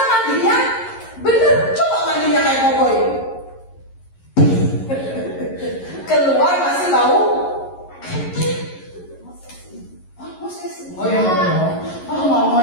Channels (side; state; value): right; late; 11 ms